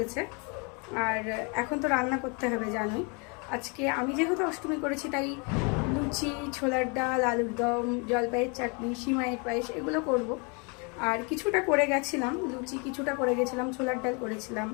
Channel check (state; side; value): quieter; right; 33.1 dB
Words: আর এখন তো রান্না করতে হবে জানোই। আজকে আমি যেহেতু অষ্টমী করেছি তাই লুচি, ছোলার ডাল, আলুর দম, জলপাইয়ের চাটনি, সিমাইয়ের পায়েস এগুলো করব। আর কিছুটা করে গেছিলাম, লুচি কিছুটা করে গেছিলাম, ছোলার ডাল করেছিলাম,